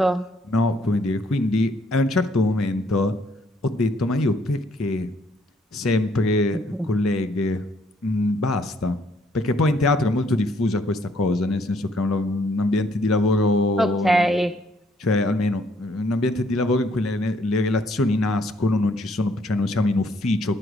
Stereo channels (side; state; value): both; normal; correlation 0.67